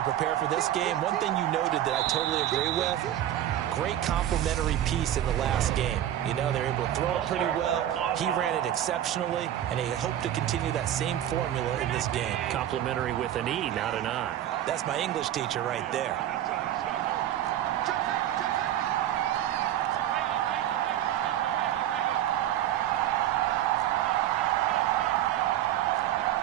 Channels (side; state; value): left; quieter; 11.9 dB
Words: prepare for this game. One thing you noted that I totally agree with, great complementary piece in the last game. You know, they were able to throw it pretty well. He ran it exceptionally, and they hope to continue that same formula in this game. Complimentary with an E, not an I. That's my English teacher right there.